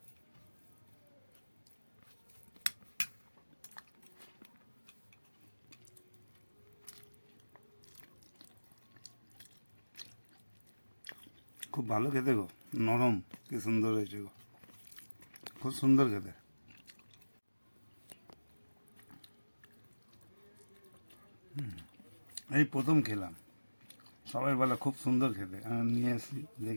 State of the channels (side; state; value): both; inverted; correlation -1.00